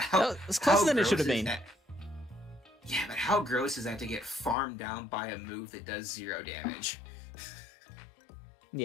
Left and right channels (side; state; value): right; drops out; at 4.5 s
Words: God, it's closer than it should have been. Yeah, but how gross is that to get farmed down by a move that does 0 damage?